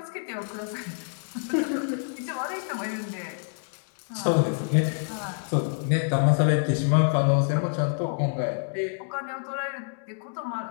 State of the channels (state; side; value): silent; right; digital silence